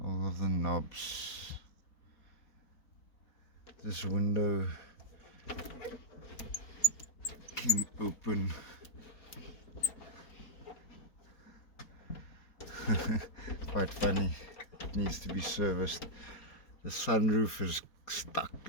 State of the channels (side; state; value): right; late; 4.3 ms